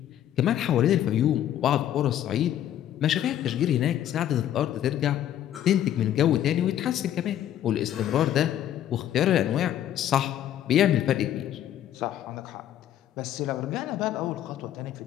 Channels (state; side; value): quieter; right; 11.3 dB